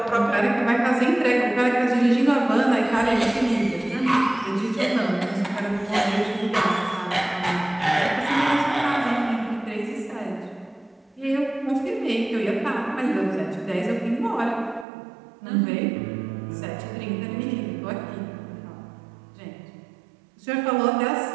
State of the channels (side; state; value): left; drops out; at 14.9 s